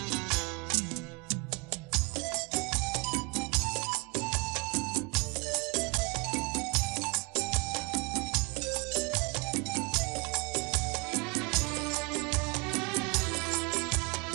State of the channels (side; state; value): left; quieter; 29.4 dB